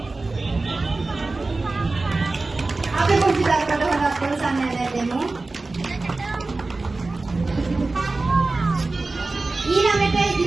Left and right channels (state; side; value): quieter; left; 3.4 dB